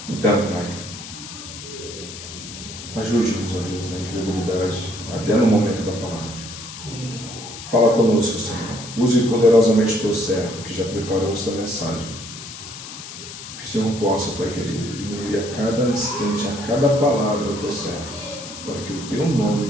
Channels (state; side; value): noise; left; hiss, 12 dB below the sound